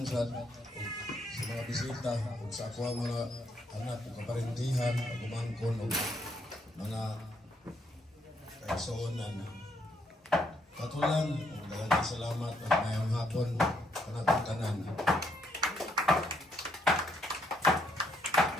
sa mga bisita ug sa ako ang mga anak ug kaparintihan ug umangkon ug mga kaigsuonan. Katulang ug daghang salamat at mayong hapon kanatong tanan.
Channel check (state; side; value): normal; both; correlation 0.73